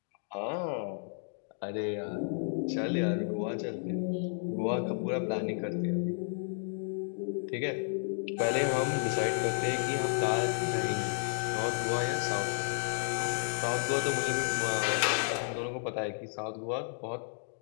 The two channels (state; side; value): silent; right; digital silence